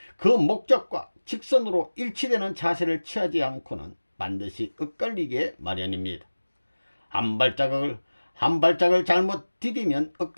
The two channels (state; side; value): inverted; both; correlation -1.00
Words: 그 목적과 직선으로 일치되는 자세를 취하지 않고는 반드시 엇갈리게 마련입니다. 한 발짝을 잘못 디디면